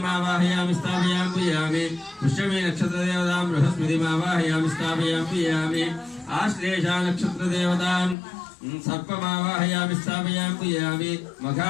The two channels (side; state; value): right; drops out; at 8.2 s